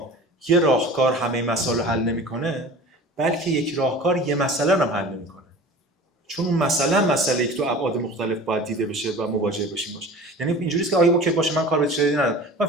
یه راهکار همه مسائل رو حل نمیکنه، بلکه یک راهکار یه مسئله رو هم حل نمیکنه. چون اون مسئله که تو ابعاد مختلف باید دیده بشه و مواجه بشیم باشه. یعنی اینجوریه که آیا اوکی باشه من کار به چیزی ندارم، من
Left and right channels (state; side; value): normal; both; correlation 0.39